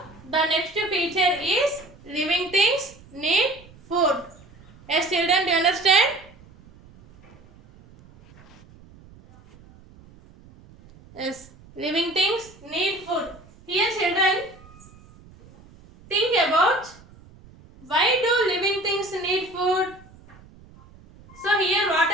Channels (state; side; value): noise; right; rumble, 24 dB below the sound